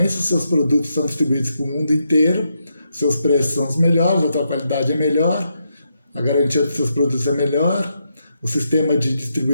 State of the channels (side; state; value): both; inverted; correlation -0.81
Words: seus produtos são distribuídos para o mundo inteiro, seus preços são os melhores, a tua qualidade é melhor, a garantia dos seus produtos é melhor, o sistema de